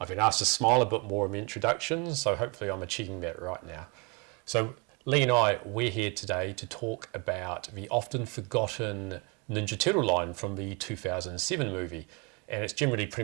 been asked to smile a bit more in the introductions, so hopefully I'm achieving that right now. So Lee and I, we're here today to talk about the often forgotten Ninja Turtle line from the 2007 movie. And it's generally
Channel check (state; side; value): quieter; left; 30.4 dB